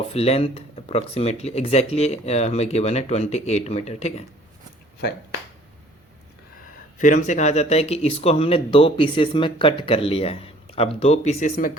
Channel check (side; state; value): both; normal; correlation 0.55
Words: length approximately exactly हमें गिवन है 28 मीटर, ठीक है। फाइन। फिर हमसे कहा जाता है कि इसको हमने 2 पीसेस में कट कर लिया है। अब 2 पीसेस में